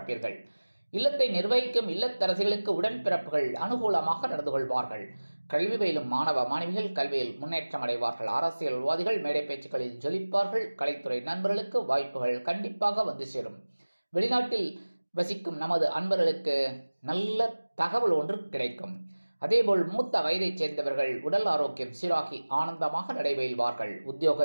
இல்லத்தை நிர்வகிக்கும் இல்லத்தரசிகளுக்கு உடன்பிறப்புகள் அனுகூலமாக நடந்து கொள்வார்கள். கல்வி பயிலும் மாணவ மாணவிகள் கல்வியில் முன்னேற்றம் அடைவார்கள். அரசியல்வாதிகள் மேடை பேச்சுக்களில் ஜொலிப்பார்கள். கலைத்துறை நண்பர்களுக்கு வாய்ப்புகள் கண்டிப்பாக வந்து சேரும். வெளிநாட்டில் வசிக்கும் நமது அன்பர்களுக்கு நல்ல தகவல் ஒன்று கிடைக்கும். அதேபோல் மூத்த வயதைச் சேர்ந்தவர்கள் உடல் ஆரோக்கியம் சீராகி ஆனந்தமாக நடைபெறுவார்கள்.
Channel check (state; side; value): inverted; both; correlation -1.00